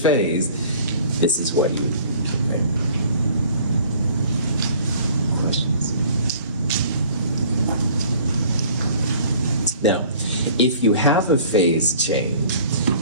this is what you would use. Now, if you have a phase change,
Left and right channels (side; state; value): both; inverted; correlation -0.51